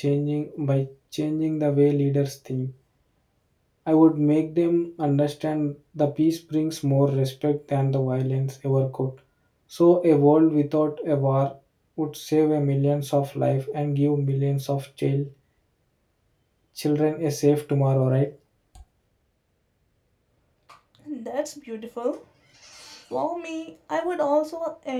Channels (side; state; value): both; identical; correlation 1.00